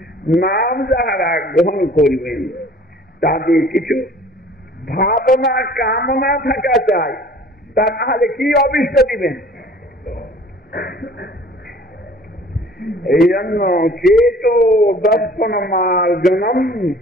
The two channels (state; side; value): normal; both; correlation 0.50